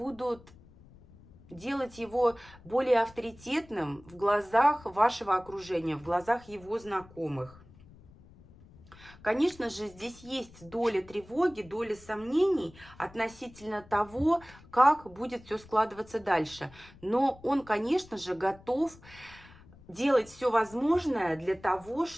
делать его более авторитетным в глазах вашего окружения, в глазах его знакомых. Конечно же, здесь есть доля тревоги, доля сомнений относительно того, как будет все складываться дальше. Но он, конечно же, готов делать все возможное для того,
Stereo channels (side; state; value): left; noise; rumble, 23 dB below the sound